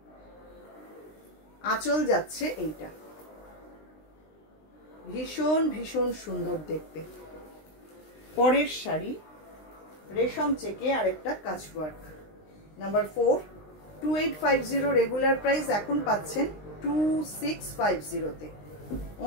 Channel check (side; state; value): right; late; 19 ms